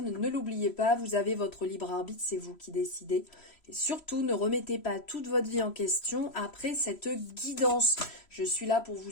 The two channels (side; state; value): right; late; 3.0 ms